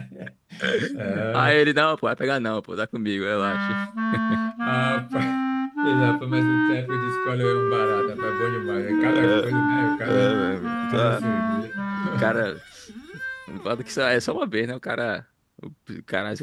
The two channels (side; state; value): both; identical; correlation 1.00